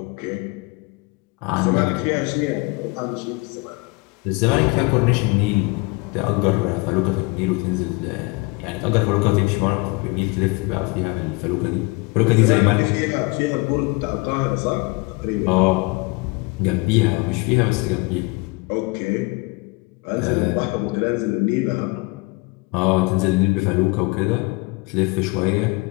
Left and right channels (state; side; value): quieter; right; 26.5 dB